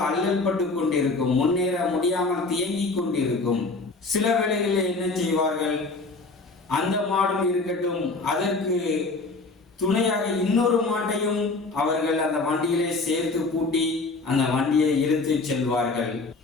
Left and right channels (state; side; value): quieter; right; 3.6 dB